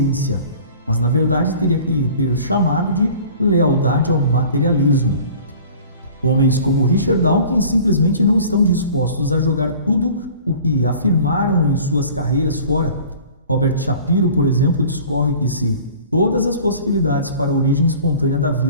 mas na verdade teria que ter chamado de lealdade ao materialismo. Homens como Richard Dawkins simplesmente não estão dispostos a jogar tudo o que afirmaram em suas carreiras fora. Robert Shapiro, por exemplo, discorre que se todas as possibilidades para a origem espontânea da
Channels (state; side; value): inverted; both; correlation -0.45